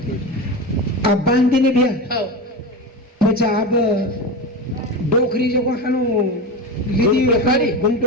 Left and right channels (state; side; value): normal; both; correlation 0.22